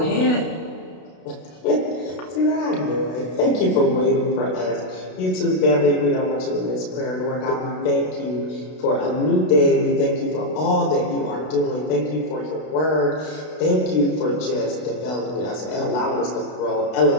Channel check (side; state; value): right; late; 32 ms